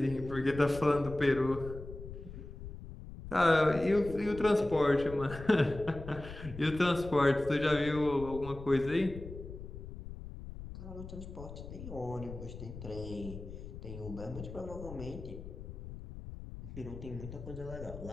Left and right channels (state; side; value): noise; left; rumble, 12 dB below the sound